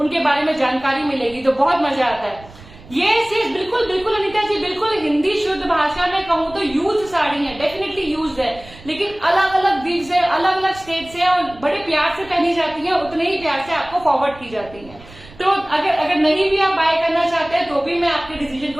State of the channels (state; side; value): noise; right; rumble, 21 dB below the sound